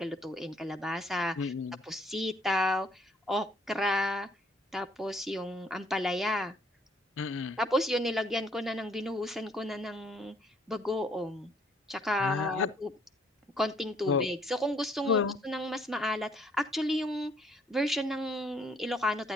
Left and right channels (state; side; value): normal; both; correlation 0.64